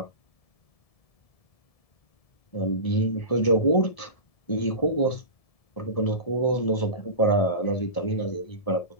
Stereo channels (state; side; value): late; right; 1.7 ms